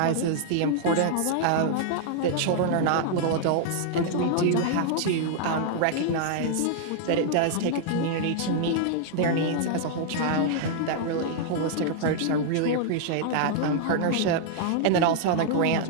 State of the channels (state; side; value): different; both; correlation -0.01